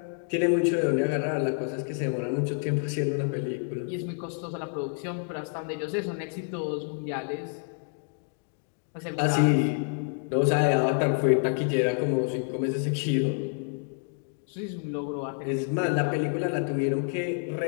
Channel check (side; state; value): right; silent; 59 dB below the other